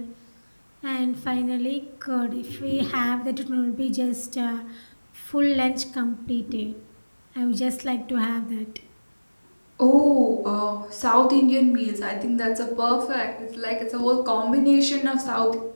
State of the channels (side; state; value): both; inverted; correlation -1.00